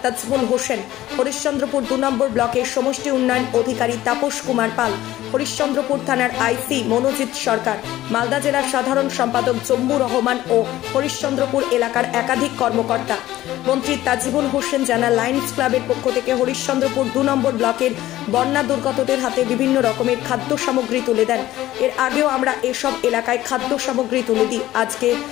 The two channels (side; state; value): right; quieter; 15.0 dB